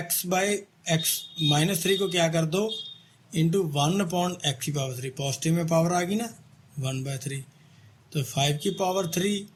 -3 को क्या कर दो इंटू 1/x की पावर 3, पॉजिटिव में पावर आ गई ना 1/3, तो 5 की पावर 3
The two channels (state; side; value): identical; both; correlation 1.00